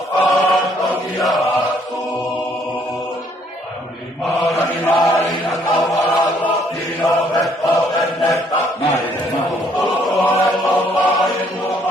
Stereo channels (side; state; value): both; normal; correlation 0.65